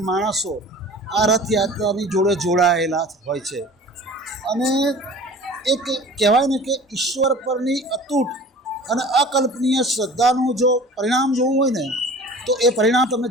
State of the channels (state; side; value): normal; both; correlation 0.42